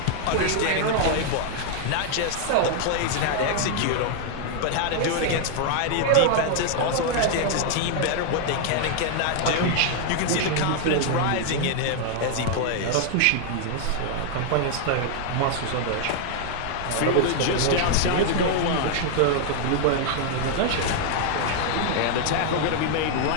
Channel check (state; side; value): different; both; correlation 0.00